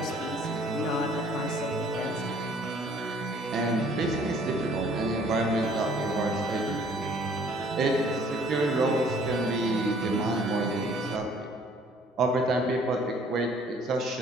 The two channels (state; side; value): normal; both; correlation 0.57